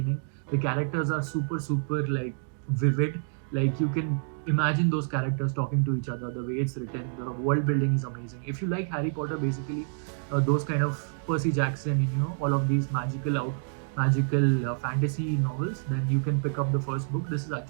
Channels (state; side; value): silent; left; digital silence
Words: The characters are super like vivid. Like, you can imagine those characters talking to each other. The way it's written, the world building is amazing. If you like Harry Potter, basically, those kind of Percy Jackson, all of these magical magical fantasy novels, then you can pick up the first book. This is